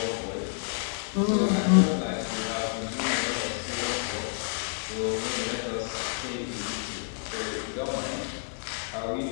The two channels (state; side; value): silent; right; 58 dB below the other